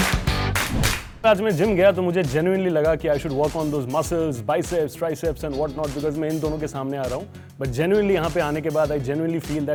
आज मैं gym गया तो मुझे जेन्युइनली लगा कि I should work on those muscles, biceps, triceps and what not, because मैं इन दोनों के सामने आ रहा हूँ. बट जेन्युइनली यहाँ पे आने के बाद आई जेन्युइनली फील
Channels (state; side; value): identical; both; correlation 1.00